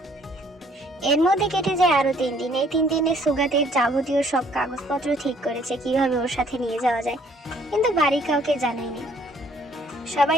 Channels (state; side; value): normal; both; correlation 0.61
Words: এর মধ্যে কেটে যায় আরো 3 দিন। এই 3 দিনে সুগাতের যাবতীয় সব কাগজপত্র ঠিক করেছে, কিভাবে ওর সাথে নিয়ে যাওয়া যায়, কিন্তু বাড়ি কাউকে জানায়নি। সবাই